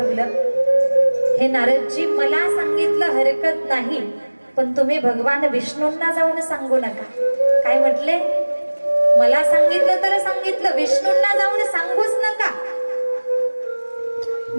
हे नारदजी मला सांगितलं हरकत नाही, पण तुम्ही भगवान विष्णूंना जाऊन सांगू नका. काय म्हटले, मला सांगितलं तर सांगितलं, विष्णूंना जाऊन सांगूच नका.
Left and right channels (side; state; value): both; inverted; correlation -1.00